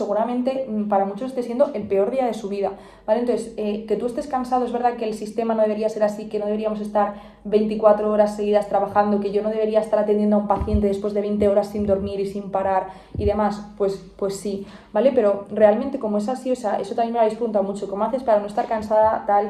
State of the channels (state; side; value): identical; both; correlation 1.00